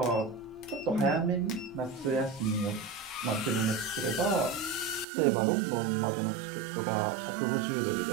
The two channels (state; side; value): drops out; left; at 5.1 s